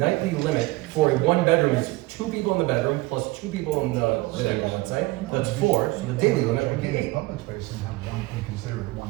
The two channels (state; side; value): quieter; left; 20.8 dB